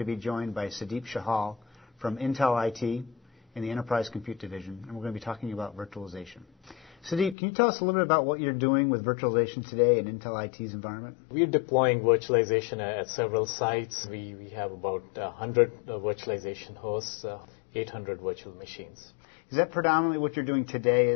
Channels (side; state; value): right; drops out; at 7.4 s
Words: be joined by Sudeep Shahal from Intel IT in the Enterprise Compute Division, and we're going to be talking about virtualization. Sudeep, can you tell us a little bit about what you're doing with virtualization today in Intel IT's environment? We're deploying virtualization at several sites. We have about 100 virtualization hosts, 800 virtual machines. Is that predominantly what you're doing today